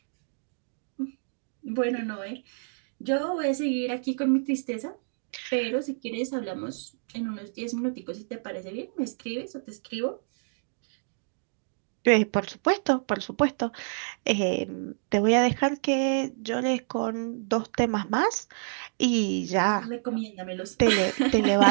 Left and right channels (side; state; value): left; silent; digital silence